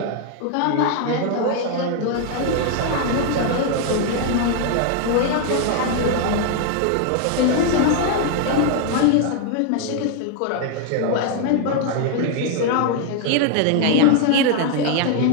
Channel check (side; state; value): both; different; correlation 0.00